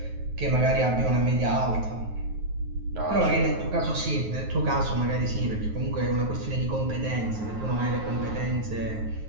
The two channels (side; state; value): left; late; 9.4 ms